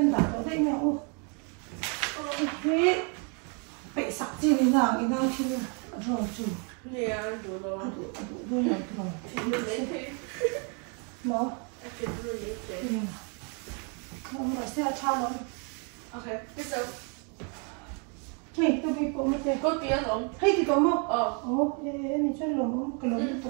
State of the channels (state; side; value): quieter; left; 37.3 dB